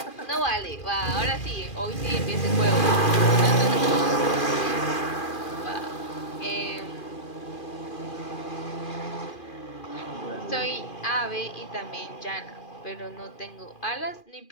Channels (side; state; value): right; late; 2.4 ms